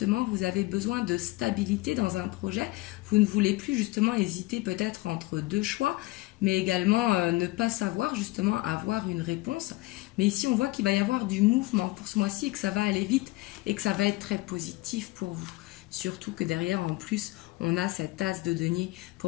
vous avez besoin de stabilité dans un projet. Vous ne voulez plus justement hésiter peut-être entre deux choix, mais également ne pas savoir justement avoir une réponse. Mais ici, on voit qu'il va y avoir du mouvement pour ce mois-ci et que ça va aller vite et que ça va être très positif pour vous. Surtout que derrière, en plus, on a cet as de denier. Pour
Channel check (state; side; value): quieter; right; 20.8 dB